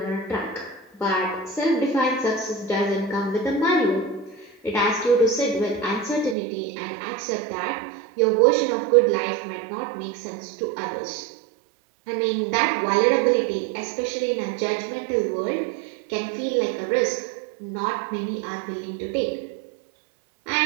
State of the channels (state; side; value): drops out; left; at 6.4 s